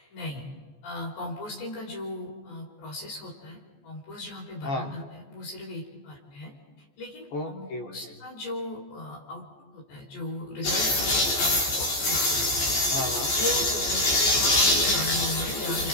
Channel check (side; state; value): right; late; 14 ms